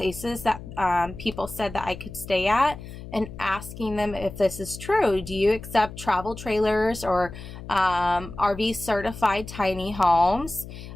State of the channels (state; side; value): noise; left; hum, 13 dB below the sound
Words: that people said that I could stay at and asking them if this is true. Do you accept travel trailers or RV certified tiny homes?